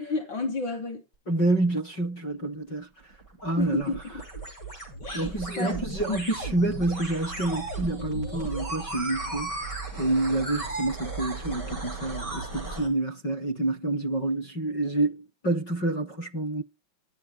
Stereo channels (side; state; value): right; late; 5.1 ms